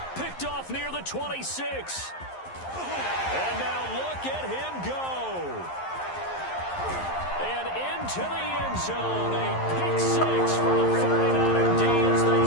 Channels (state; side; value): late; right; 11 ms